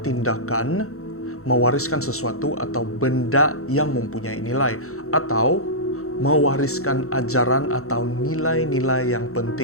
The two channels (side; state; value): right; late; 0.63 ms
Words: tindakan mewariskan sesuatu atau benda yang mempunyai nilai, atau mewariskan ajaran atau nilai-nilai yang